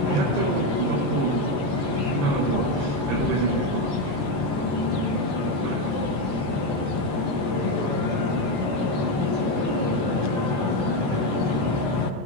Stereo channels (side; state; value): left; late; 21 ms